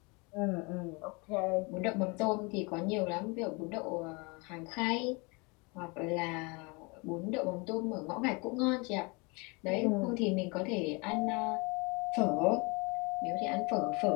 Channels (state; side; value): quieter; right; 28.8 dB